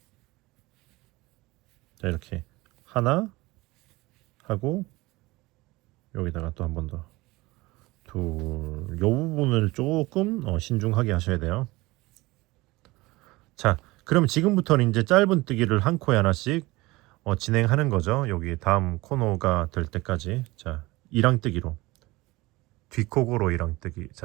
자 이렇게 하나 하고 여기다가 또 한 번 더 둘, 요 부분을 조금 신중하게 하셔야 돼요. 자 그럼 지금부터는 이제 짧은뜨기를 한 코에 하나씩 진행하는 거죠. 여기 다음 코너가 될 때까지. 자 이랑뜨기로 뒷코고로 이랑뜨기.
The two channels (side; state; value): left; quieter; 21.0 dB